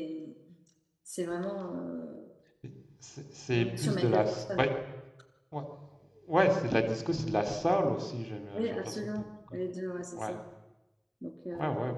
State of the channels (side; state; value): both; identical; correlation 1.00